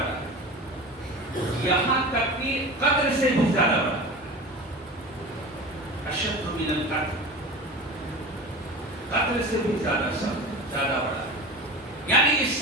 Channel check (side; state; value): both; normal; correlation 0.32